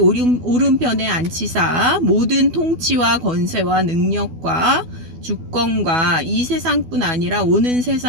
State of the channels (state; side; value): late; left; 12 ms